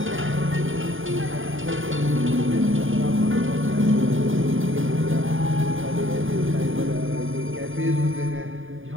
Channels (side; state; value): left; late; 0.58 ms